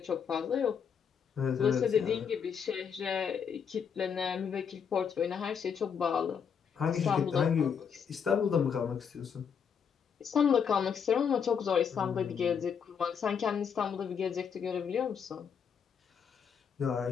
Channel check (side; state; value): right; quieter; 7.1 dB